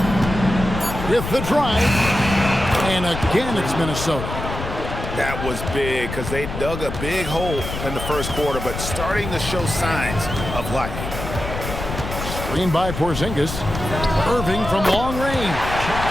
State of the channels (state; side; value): noise; left; rumble, 7 dB below the sound